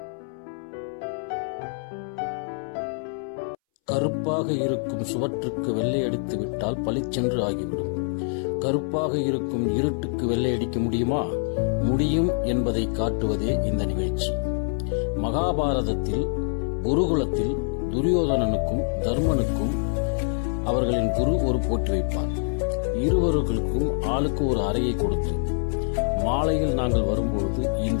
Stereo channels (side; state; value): right; silent; 62 dB below the other